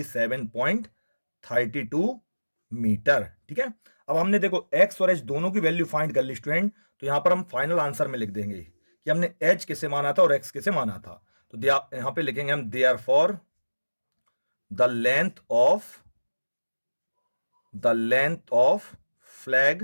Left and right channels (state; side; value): inverted; both; correlation -1.00